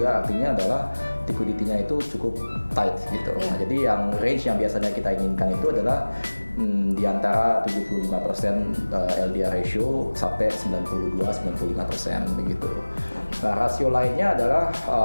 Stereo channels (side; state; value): both; inverted; correlation -1.00